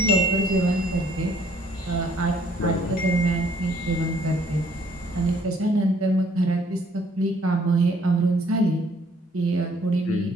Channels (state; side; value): normal; both; correlation 0.62